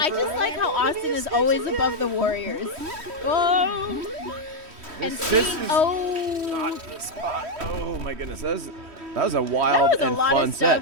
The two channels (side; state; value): left; late; 3.1 ms